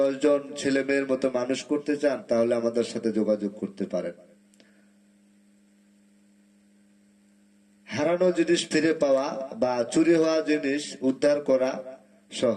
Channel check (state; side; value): identical; both; correlation 1.00